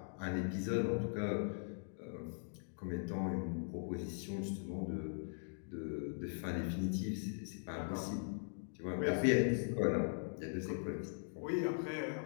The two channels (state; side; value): silent; right; digital silence